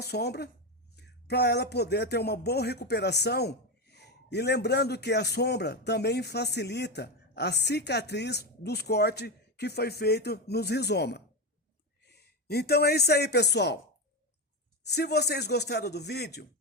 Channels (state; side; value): normal; both; correlation 0.14